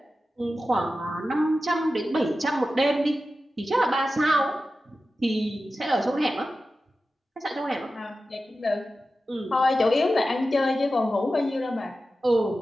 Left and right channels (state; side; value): normal; both; correlation 0.93